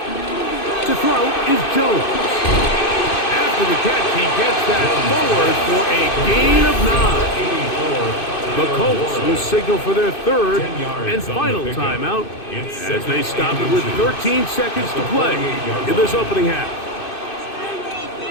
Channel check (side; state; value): right; late; 2.6 ms